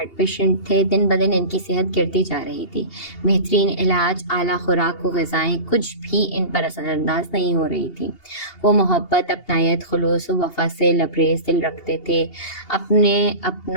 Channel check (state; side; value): late; right; 2.8 ms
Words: پیشنٹ تھے، دن بدن ان کی صحت گرتی جا رہی تھی۔ بہترین علاج، اعلیٰ خوراک و غذائیں کچھ بھی ان پر اثر انداز نہیں ہو رہی تھی۔ وہ محبت، اپنائیت، خلوص و وفا سے لبریز دل رکھتے تھے۔